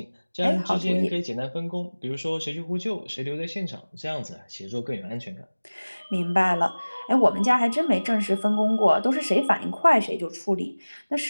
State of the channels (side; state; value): both; inverted; correlation -1.00